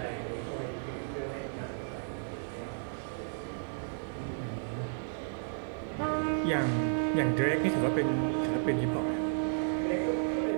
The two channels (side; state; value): left; silent; digital silence